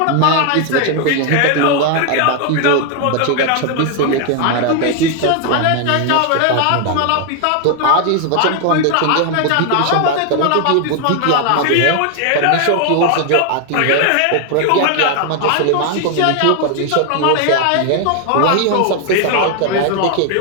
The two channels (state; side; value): different; both; correlation 0.00